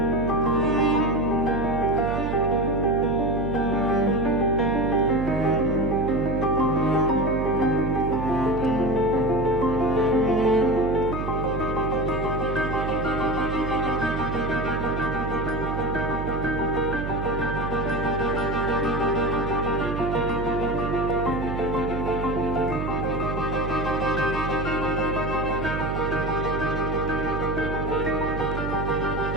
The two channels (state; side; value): noise; right; hum, 4 dB below the sound